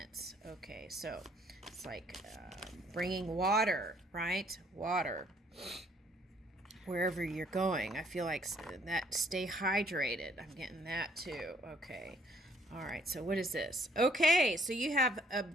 Okay, so it's like bringing water, right? Water. Wherever you're going. I feel like that stay hydrated. I'm getting that too. Okay. All right. So what is this? Okay. So you have a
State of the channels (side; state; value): both; normal; correlation 0.64